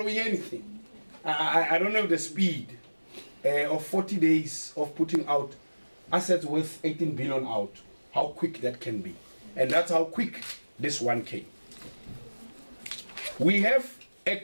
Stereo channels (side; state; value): both; inverted; correlation -1.00